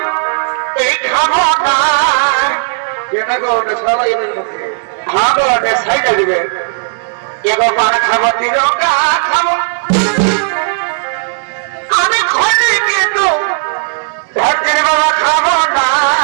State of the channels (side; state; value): left; silent; digital silence